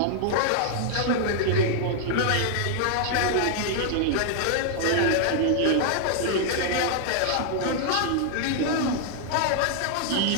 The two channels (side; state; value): both; different; correlation -0.01